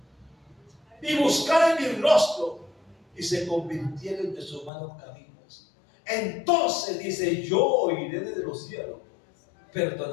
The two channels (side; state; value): right; drops out; at 4.7 s